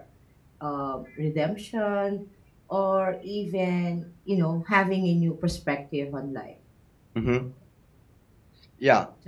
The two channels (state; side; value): identical; both; correlation 1.00